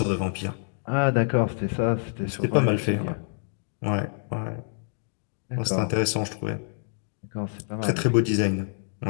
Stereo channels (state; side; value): silent; right; digital silence